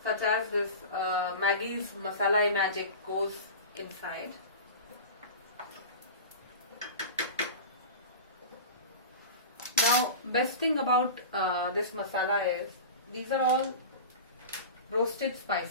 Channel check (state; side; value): inverted; both; correlation -0.31